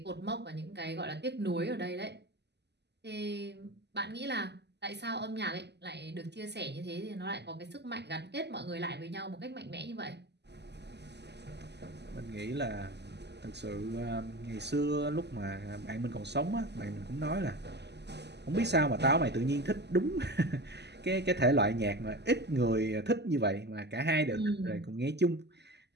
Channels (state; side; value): late; left; 0.50 ms